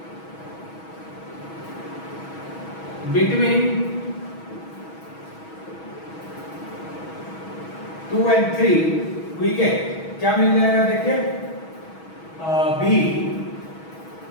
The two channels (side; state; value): right; late; 6.2 ms